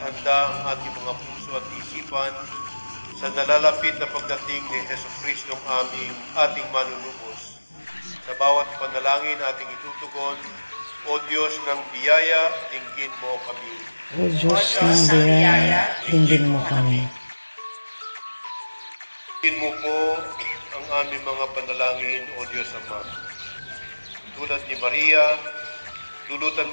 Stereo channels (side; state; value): both; inverted; correlation -1.00